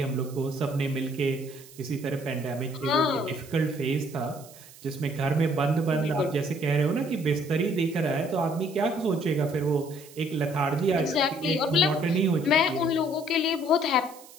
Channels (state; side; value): noise; right; hiss, 21 dB below the sound